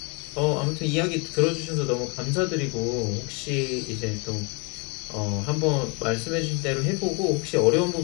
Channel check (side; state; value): right; quieter; 32.0 dB